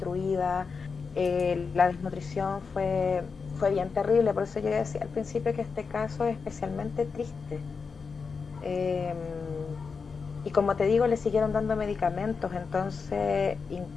la desnutrición fue bien terrible. Por eso yo decía al principio que este caso es especialmente triste. Y como te digo, le siguieron dando medicamentos. Entonces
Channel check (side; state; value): right; quieter; 5.2 dB